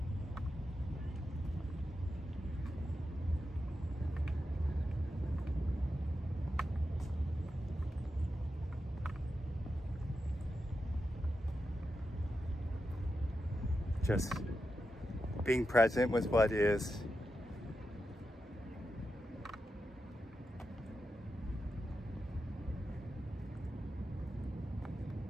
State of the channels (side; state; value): both; normal; correlation 0.89